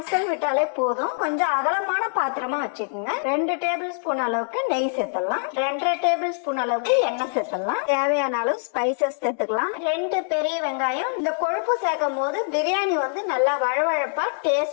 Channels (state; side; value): silent; right; digital silence